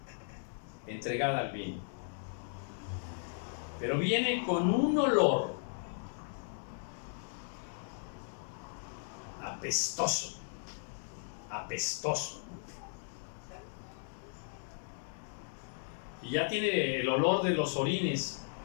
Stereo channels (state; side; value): silent; right; digital silence